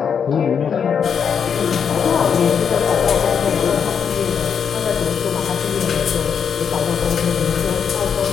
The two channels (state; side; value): quieter; right; 7.1 dB